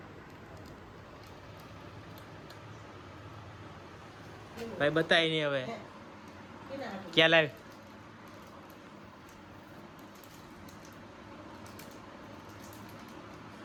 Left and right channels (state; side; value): identical; both; correlation 1.00